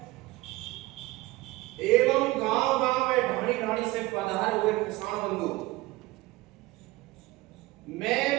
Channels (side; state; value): left; quieter; 20.0 dB